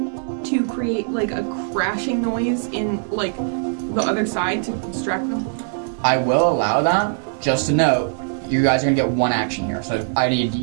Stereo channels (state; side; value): silent; left; 62 dB below the other